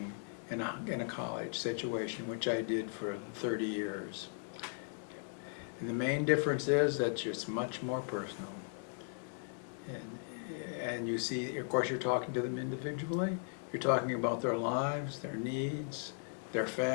in a college situation, which I did for 30 years. And the main difference is that it's much more personal. And you see, of course, you're talking to them individually. You're talking about their lives, their needs, their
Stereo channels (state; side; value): silent; right; 53 dB below the other